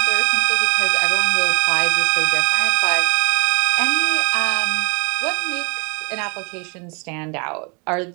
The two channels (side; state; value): left; quieter; 32.2 dB